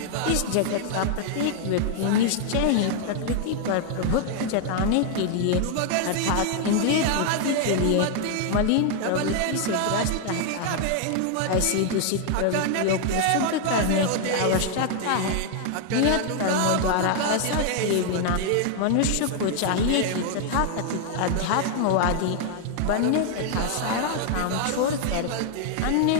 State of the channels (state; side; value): different; both; correlation 0.00